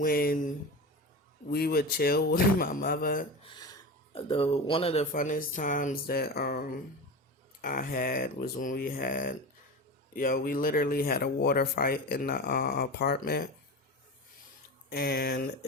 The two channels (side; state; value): both; normal; correlation 0.26